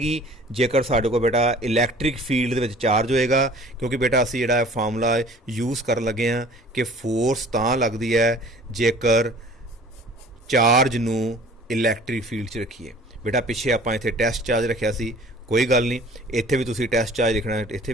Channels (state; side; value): normal; both; correlation 0.49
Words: ਜੇਕਰ ਸਾਡੇ ਕੋਲ ਬੇਟਾ ਇਲੈਕਟ੍ਰਿਕ ਫੀਲਡ ਦੇ ਵਿੱਚ ਚਾਰਜ ਹੋਏਗਾ। ਕਿਉਂਕਿ ਬੇਟਾ ਅਸੀਂ ਜਿਹੜਾ ਫਾਰਮੂਲਾ ਯੂਜ਼ ਕਰਨ ਲੱਗੇ ਹਾਂ ਕਿ ਫੋਰਸ ਤਾਂ ਲੱਗਦੀ ਹੈ ਜੇਕਰ ਚਾਰਜ ਨੂੰ ਇਲੈਕਟ੍ਰਿਕ ਫੀਲਡ 'ਚ ਰੱਖੀਏ। ਬੇਟਾ ਪਿੱਛੇ ਆਪਾਂ ਇੱਥੇ ਟੈਸਟ ਚਾਰਜ ਰੱਖਿਆ ਸੀ, ਕੋਈ ਗੱਲ ਨਹੀਂ, ਇੱਥੇ ਵੀ ਤੁਸੀਂ ਟੈਸਟ ਚਾਰਜ ਲਿਖਣਾ ਇੱਥੇ